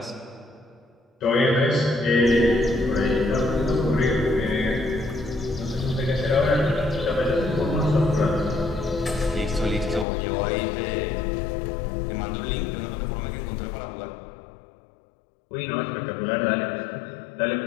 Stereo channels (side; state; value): right; drops out; at 10.1 s